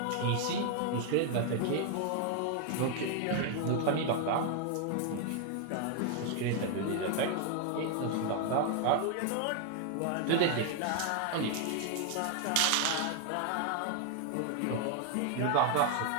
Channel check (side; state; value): both; different; correlation 0.00